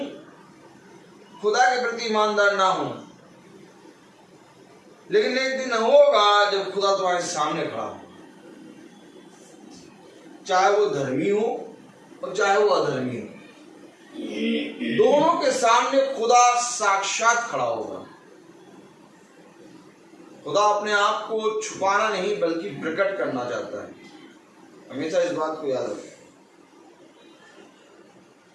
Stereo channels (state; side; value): identical; both; correlation 1.00